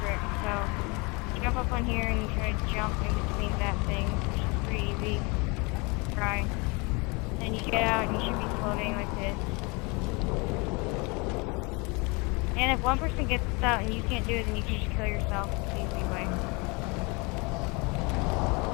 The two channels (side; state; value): right; quieter; 28.7 dB